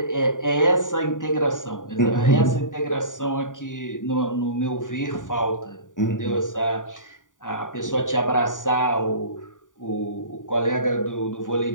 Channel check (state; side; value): late; right; 0.88 ms